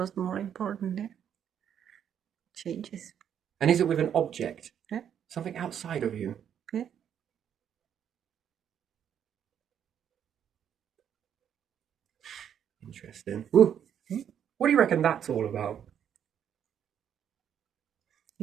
more important. Yeah. Changes. And is it with an object? Yeah. Something outside of you? Yeah. Interesting. Ooh. What do you reckon that's all about?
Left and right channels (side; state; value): left; quieter; 9.0 dB